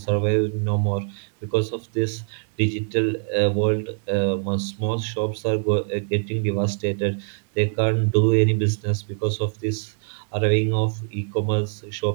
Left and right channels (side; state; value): left; silent; 59 dB below the other